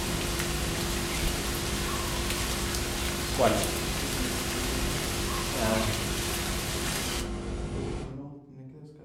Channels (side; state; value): both; identical; correlation 1.00